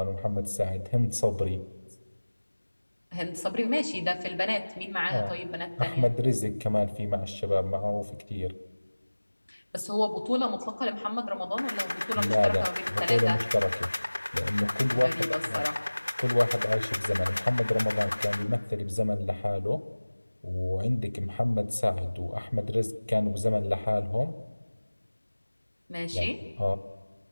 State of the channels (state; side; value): inverted; both; correlation -1.00